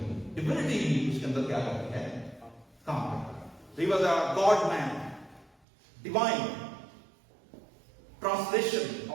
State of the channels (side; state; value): left; drops out; at 5.5 s